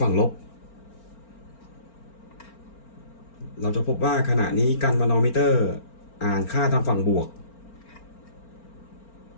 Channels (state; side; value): late; right; 4.4 ms